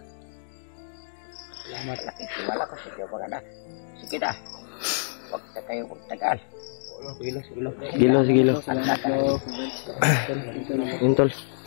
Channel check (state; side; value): silent; right; digital silence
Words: Salamat. Nakikilala ko sa inyo mga anak. Sige na. Huwag na kayo magtagal. Sige lo, sige lo. Sige, lo, sige, lo. At naka. Yun, tol.